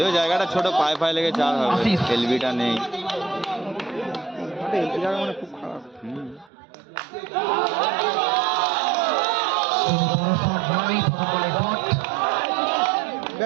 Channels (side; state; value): left; drops out; at 6.5 s